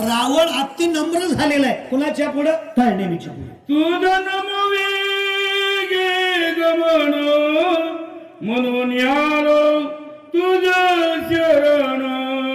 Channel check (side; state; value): both; identical; correlation 1.00